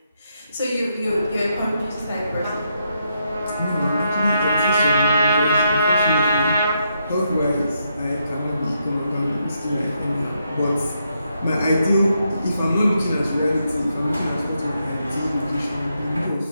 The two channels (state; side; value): inverted; both; correlation -0.79